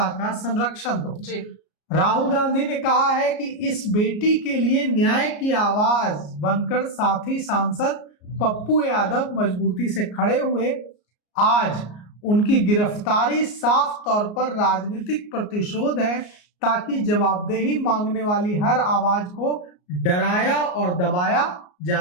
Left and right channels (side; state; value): right; late; 33 ms